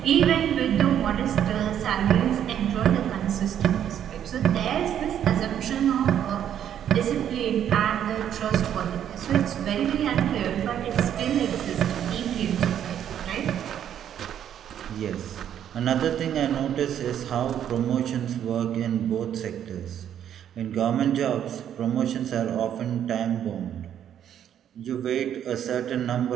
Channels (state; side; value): quieter; left; 9.9 dB